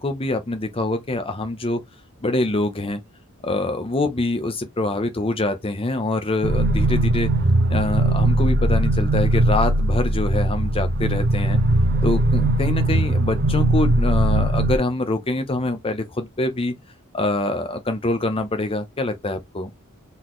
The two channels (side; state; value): both; normal; correlation 0.67